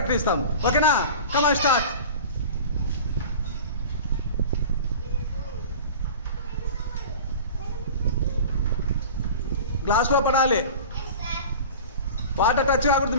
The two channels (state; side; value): inverted; both; correlation -0.36